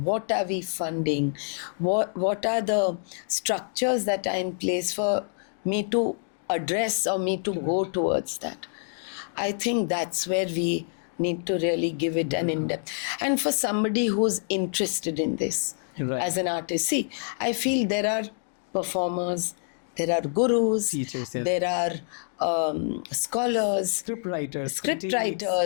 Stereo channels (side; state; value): right; silent; 60 dB below the other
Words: What are we funding? What are the structures that are in place for me to address or me to go towards that? I think that's where we need to really give it an in-depth. And for somebody who's interested in this as an artist, see, I feel there are performers, there are gurus, teachers, there are scholars, script writers,